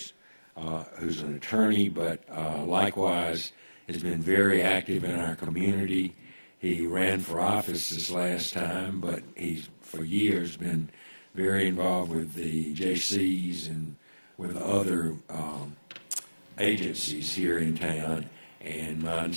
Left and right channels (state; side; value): inverted; both; correlation -1.00